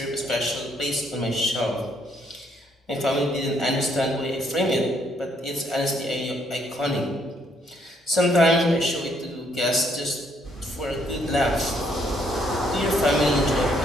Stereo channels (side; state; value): both; normal; correlation 0.70